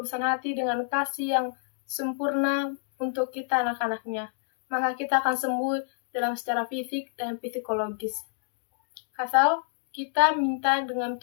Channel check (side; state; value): right; silent; digital silence